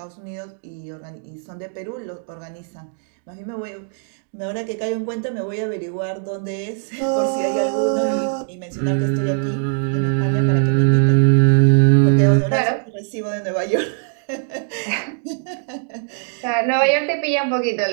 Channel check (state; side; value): silent; left; 65 dB below the other